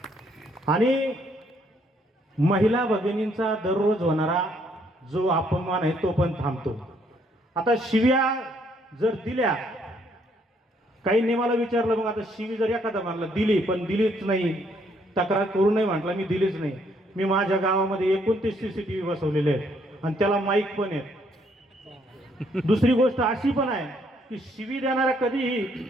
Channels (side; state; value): both; normal; correlation 0.69